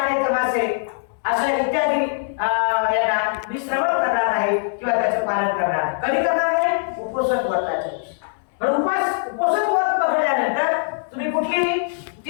तमाशे अशा इत्यादी यांना मी श्रवण करणार आहे किंवा त्याचं पालन करणार आहे. कधी करणार आहे? उपोषण व्रताच्या दिवशी. पण उपोषण व्रत पकडल्यानंतर तुम्ही कुठली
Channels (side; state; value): right; silent; 64 dB below the other